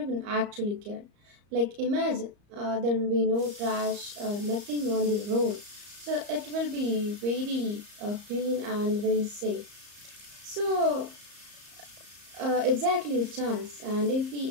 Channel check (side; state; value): left; late; 34 ms